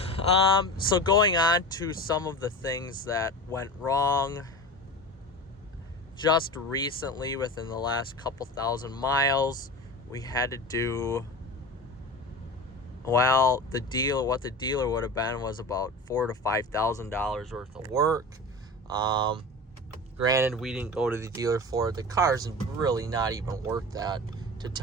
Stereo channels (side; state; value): both; normal; correlation 0.31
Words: So going on to some of the things that went wrong just recently within the last couple thousand miles, we had to do, well, what the dealer would have been was about $4,000 to $5,000 worth of work. Granted, we didn't go to the dealer for it. The car's really not even worth that, to